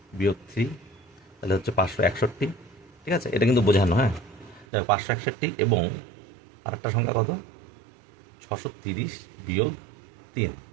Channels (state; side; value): drops out; left; at 4.7 s